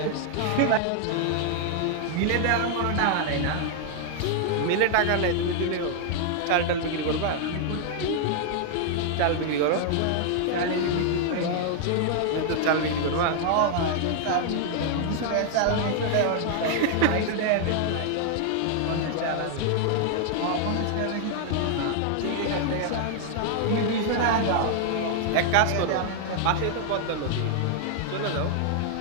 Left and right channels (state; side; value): different; both; correlation 0.00